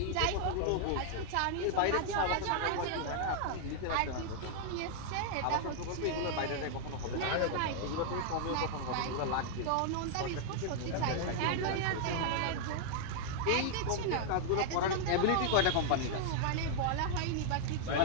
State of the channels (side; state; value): both; different; correlation 0.00